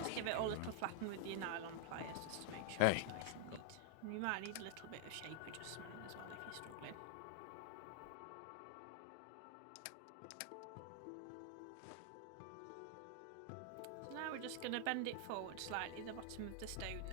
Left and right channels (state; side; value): different; both; correlation 0.00